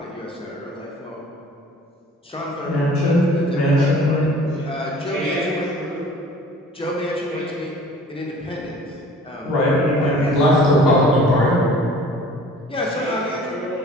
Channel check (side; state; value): both; normal; correlation 0.49